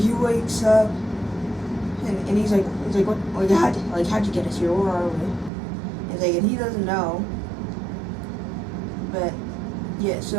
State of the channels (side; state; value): left; drops out; at 5.5 s